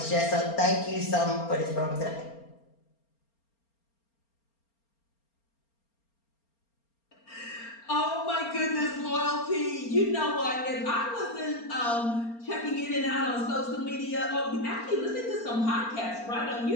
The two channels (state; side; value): late; right; 4.3 ms